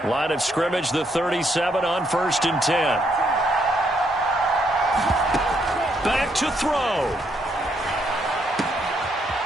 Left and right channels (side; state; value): both; normal; correlation 0.74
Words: Line of scrimmage, the 37 on 1st and 10. Back to throw.